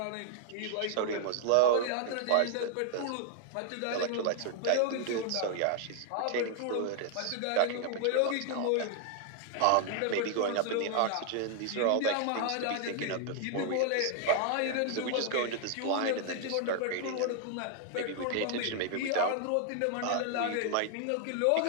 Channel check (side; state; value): both; different; correlation 0.00